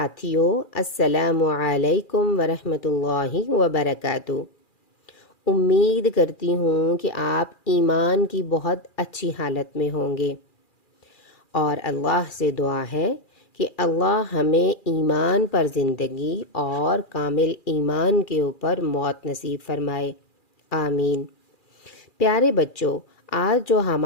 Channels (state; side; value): late; right; 2.4 ms